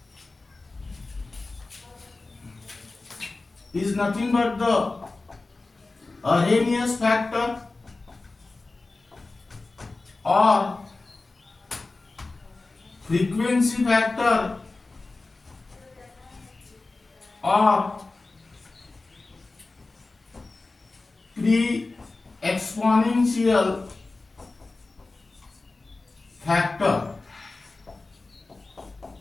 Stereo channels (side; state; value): right; quieter; 3.4 dB